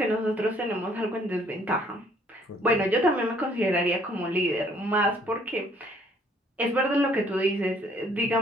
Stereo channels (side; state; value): both; normal; correlation 0.62